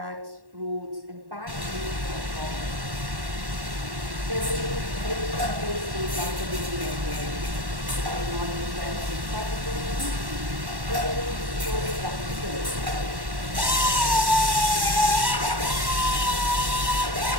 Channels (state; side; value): late; left; 1.1 ms